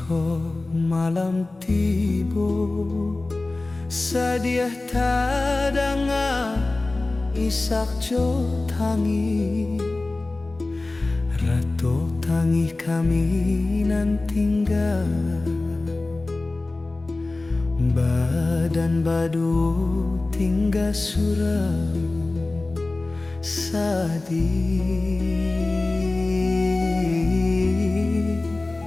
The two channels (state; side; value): quieter; right; 3.1 dB